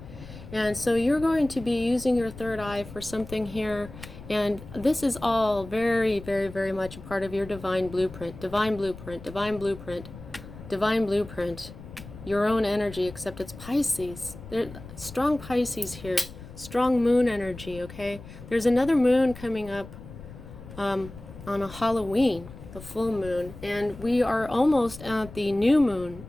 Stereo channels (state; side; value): noise; left; rumble, 15 dB below the sound